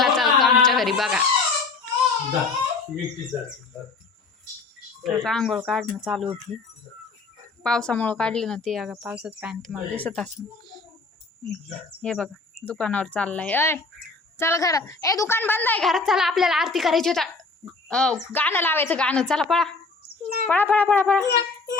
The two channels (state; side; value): quieter; right; 4.0 dB